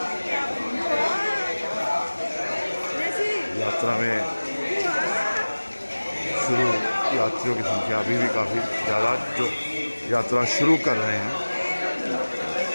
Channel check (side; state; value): both; inverted; correlation -1.00